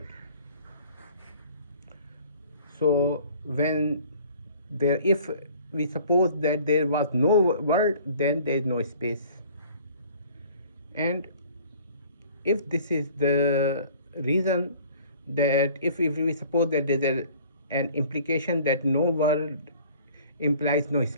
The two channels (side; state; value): both; inverted; correlation -0.51